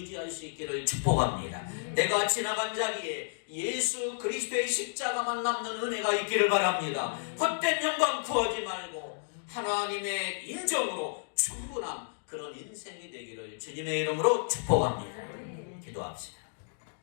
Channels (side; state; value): right; silent; digital silence